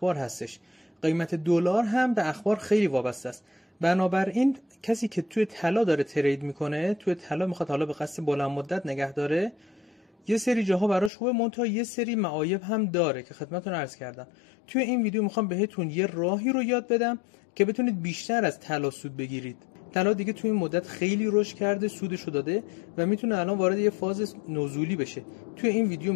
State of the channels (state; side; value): drops out; right; at 11.1 s